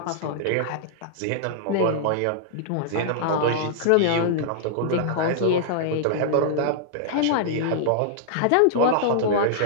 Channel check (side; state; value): both; different; correlation -0.02